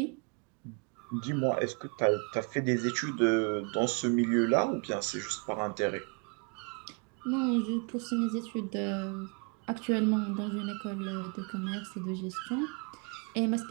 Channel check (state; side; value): quieter; left; 36.0 dB